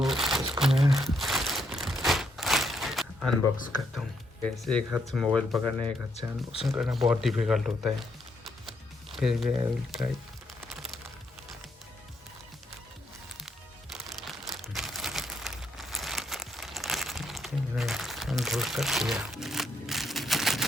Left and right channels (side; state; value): both; normal; correlation 0.75